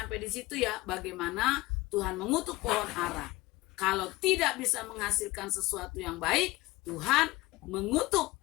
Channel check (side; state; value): right; quieter; 20.2 dB